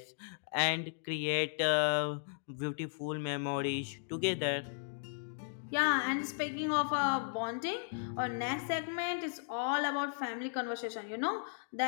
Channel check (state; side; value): silent; right; digital silence